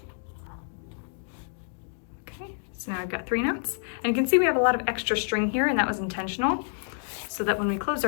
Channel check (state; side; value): silent; right; digital silence